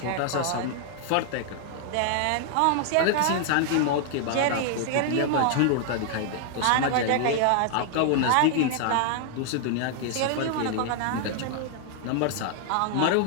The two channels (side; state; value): both; different; correlation 0.00